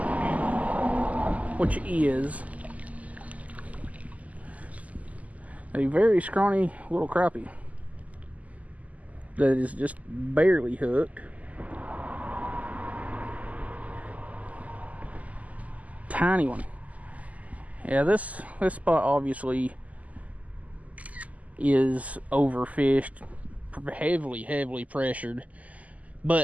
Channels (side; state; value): left; late; 0.073 ms